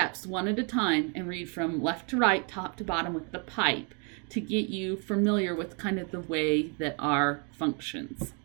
one at a time and read from left to right, top to bottom with the pipe to get you familiar with kind of the way that R functions.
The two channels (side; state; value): left; quieter; 36.6 dB